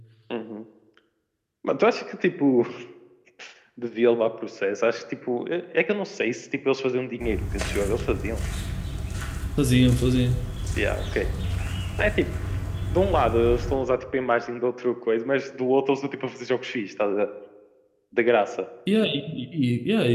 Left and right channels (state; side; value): identical; both; correlation 1.00